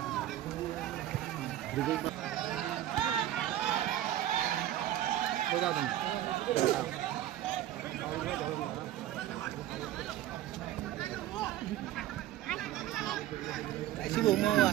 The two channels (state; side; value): quieter; left; 13.1 dB